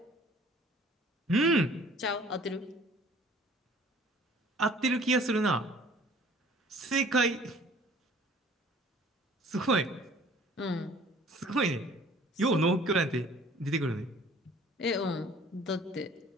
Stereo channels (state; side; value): normal; both; correlation 0.52